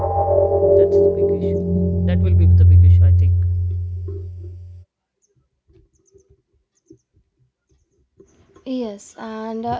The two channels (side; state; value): both; identical; correlation 1.00